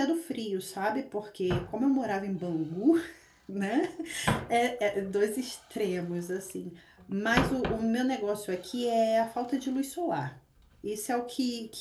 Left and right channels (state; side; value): identical; both; correlation 1.00